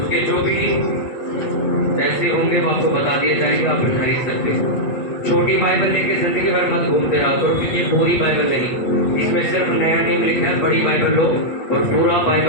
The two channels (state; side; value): late; right; 8.5 ms